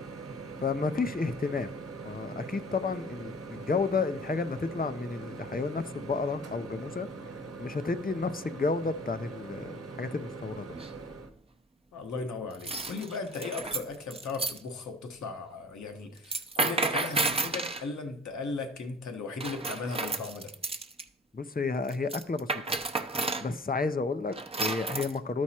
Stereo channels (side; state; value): both; normal; correlation 0.46